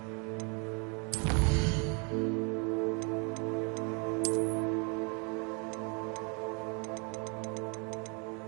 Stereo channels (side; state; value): left; quieter; 34.3 dB